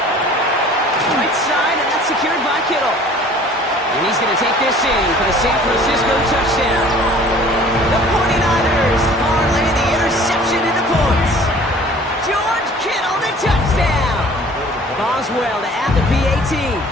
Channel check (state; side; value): normal; both; correlation 0.50